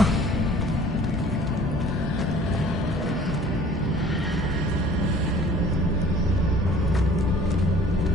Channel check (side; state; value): both; normal; correlation 0.51